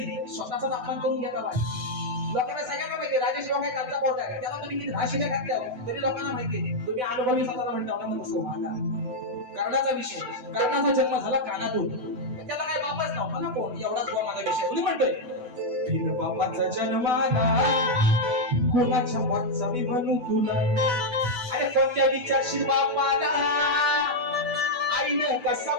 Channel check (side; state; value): left; late; 8.0 ms